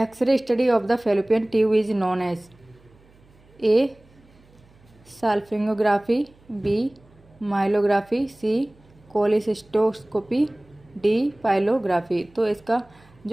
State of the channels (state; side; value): noise; right; hum, 29 dB below the sound